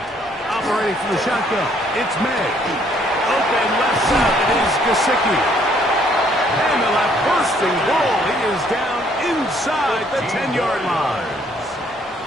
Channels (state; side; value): normal; both; correlation 0.65